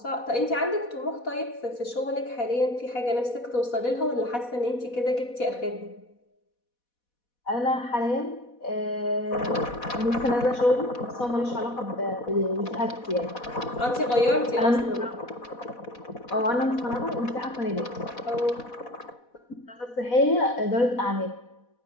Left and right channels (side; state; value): right; late; 4.1 ms